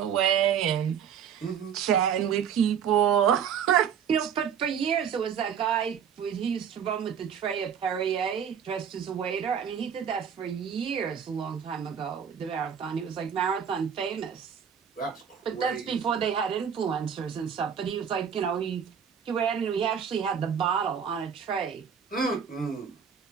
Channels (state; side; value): quieter; left; 7.8 dB